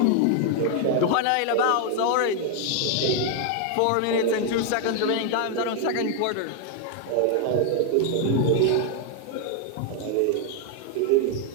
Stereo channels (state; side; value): different; both; correlation 0.01